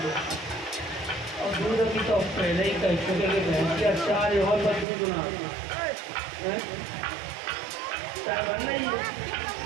और दूध अभी तो पहले ही कह चुके कि भैंस के अचार और पर दूध ना है चाय बनना ही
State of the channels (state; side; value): drops out; left; at 4.9 s